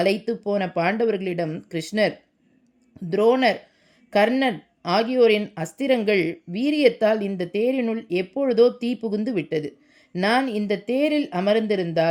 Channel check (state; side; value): identical; both; correlation 1.00